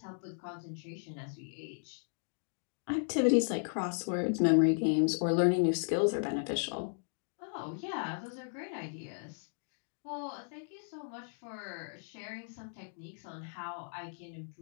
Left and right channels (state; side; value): silent; right; digital silence